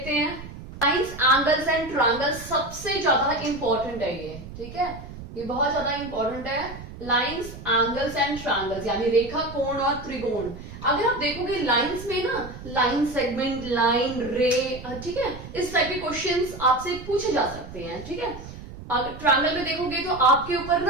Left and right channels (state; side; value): noise; right; rumble, 13 dB below the sound